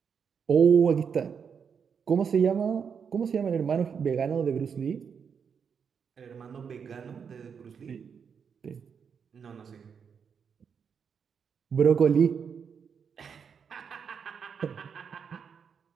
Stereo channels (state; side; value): quieter; left; 6.7 dB